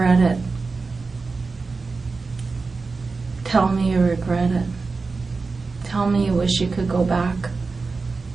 it. Tell me you regret it. Tell me you wish you could go back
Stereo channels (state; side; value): quieter; left; 4.2 dB